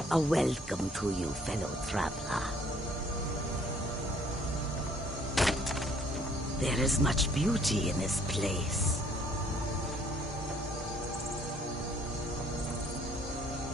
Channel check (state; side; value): normal; both; correlation 0.61